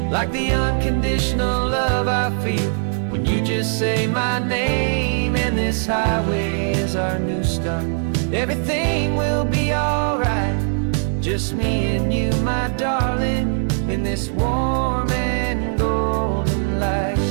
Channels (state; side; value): silent; left; 64 dB below the other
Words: Like the unconditional love I feel when you just say my name. And this highway is our new start. Everything will be alright, just me and you, my darling, in this warm and golden light.